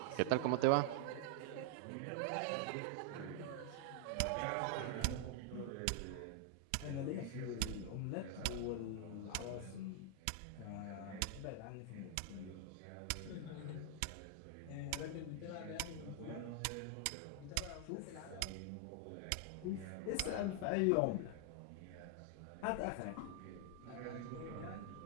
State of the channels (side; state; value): both; different; correlation 0.00